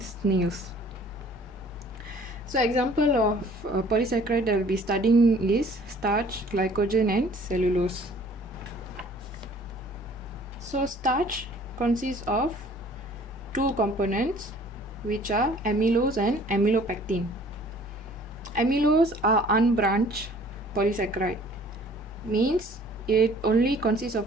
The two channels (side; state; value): both; normal; correlation 0.53